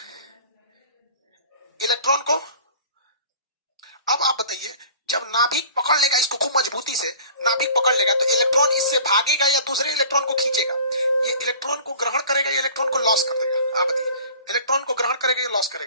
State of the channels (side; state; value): both; inverted; correlation -0.46